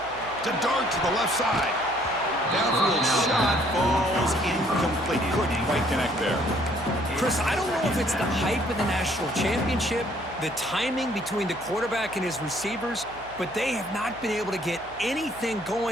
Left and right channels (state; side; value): noise; left; hum, 22 dB below the sound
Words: To Dart to the left side. Downfield shot falls incomplete. Couldn't quite connect there. Chris, I don't know if it's the hype of the national championship, the timing between the quarterback and his receivers, but they have not been able to get anything